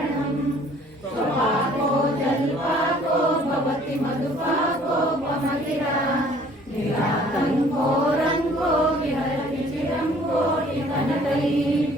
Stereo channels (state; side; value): normal; both; correlation 0.56